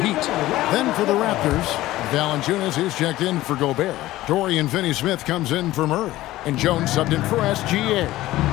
Then for the Raptors, Valanciunas is checked in for Gobert. Dorian Finney-Smith comes in for Murray. And Jones subbed in for SGA.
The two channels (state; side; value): quieter; right; 16.3 dB